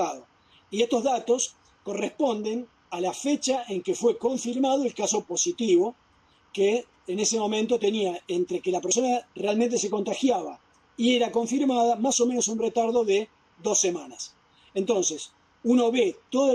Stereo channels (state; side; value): identical; both; correlation 1.00